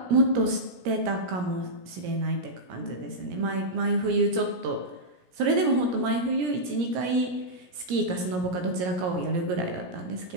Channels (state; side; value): late; left; 17 ms